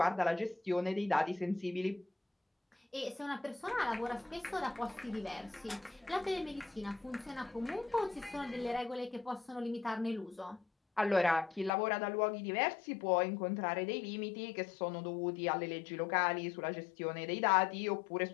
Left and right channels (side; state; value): right; drops out; at 11.7 s